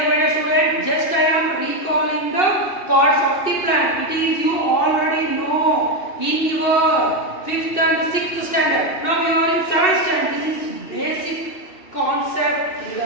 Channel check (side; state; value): right; late; 2.6 ms